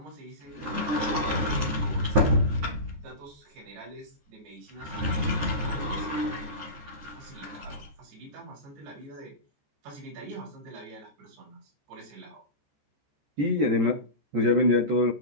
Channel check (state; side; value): late; left; 13 ms